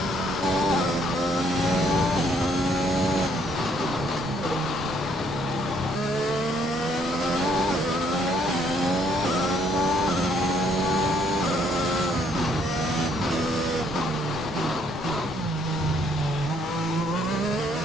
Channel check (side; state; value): both; normal; correlation 0.67